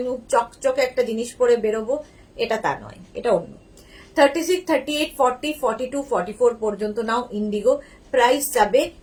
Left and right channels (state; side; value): identical; both; correlation 1.00